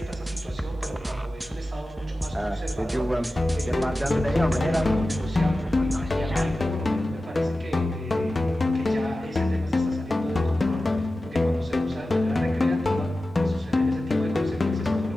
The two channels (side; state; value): both; normal; correlation 0.95